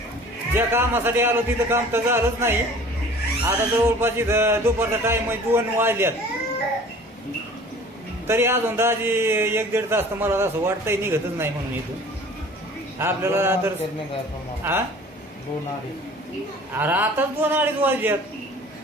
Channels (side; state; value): both; normal; correlation 0.46